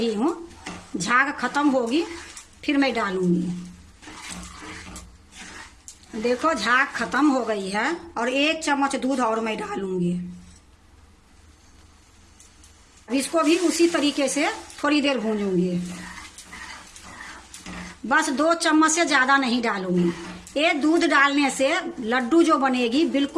हूँ। झाग खत्म होगी फिर मैं डालूंगी। देखो झाग खत्म हो गई है और 1 चम्मच दूध और मैं डालूंगी। अब इसको भी उसी तरीके से थोड़ी देर भूंजूंगी। बस 2 चम्मच से ज्यादा नहीं डालूंगी। ये दूध डालने से लड्डू जो बनेगी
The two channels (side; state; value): both; identical; correlation 1.00